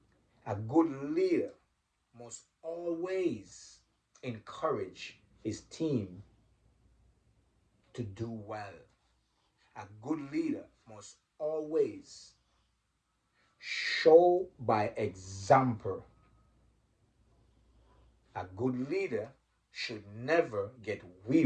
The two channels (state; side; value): identical; both; correlation 1.00